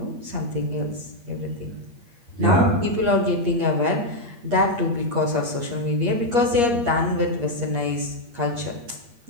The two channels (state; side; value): late; left; 8.5 ms